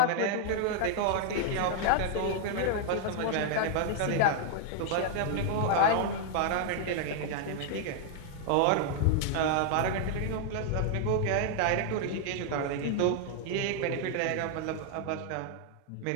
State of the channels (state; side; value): different; both; correlation 0.00